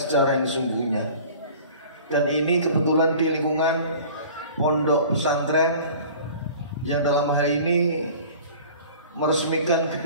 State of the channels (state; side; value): inverted; both; correlation -0.44